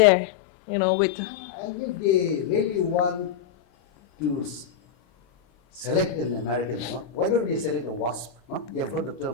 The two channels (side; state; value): right; quieter; 7.6 dB